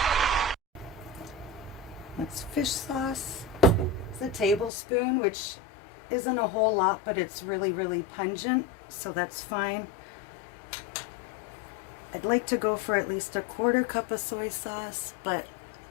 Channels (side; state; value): right; drops out; at 4.7 s